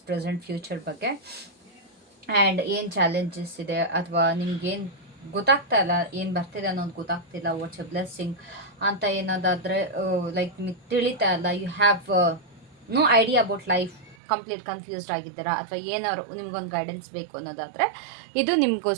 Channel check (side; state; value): left; drops out; at 14.2 s